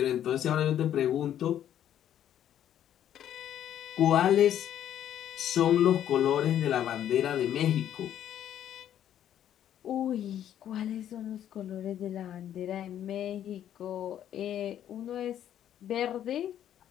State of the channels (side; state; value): right; quieter; 10.7 dB